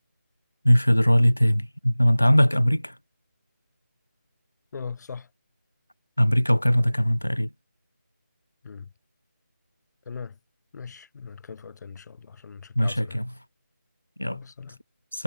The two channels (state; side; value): inverted; both; correlation -1.00